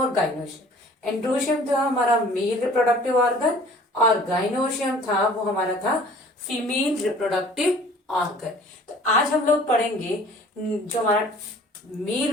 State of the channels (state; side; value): normal; both; correlation 0.50